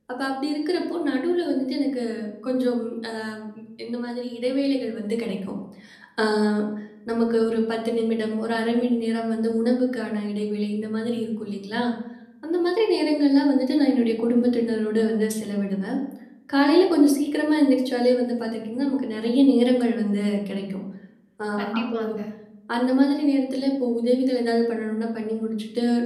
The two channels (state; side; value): identical; both; correlation 1.00